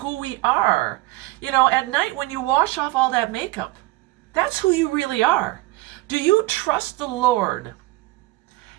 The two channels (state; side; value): quieter; left; 19.6 dB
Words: we are. At night when you wash off all that makeup, that's who you really are. Do you trust the Lord